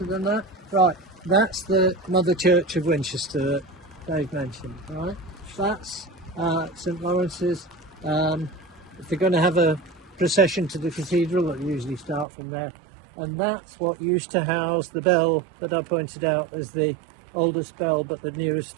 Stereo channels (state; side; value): drops out; left; at 12.2 s